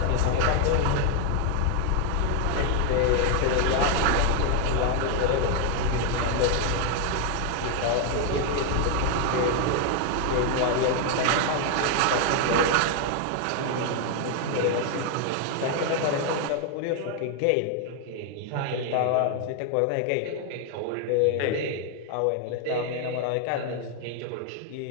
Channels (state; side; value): different; both; correlation 0.01